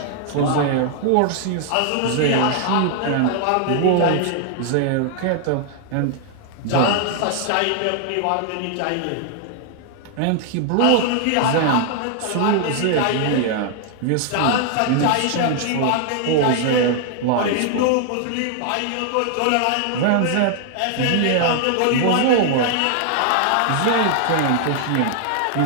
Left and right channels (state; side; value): different; both; correlation 0.00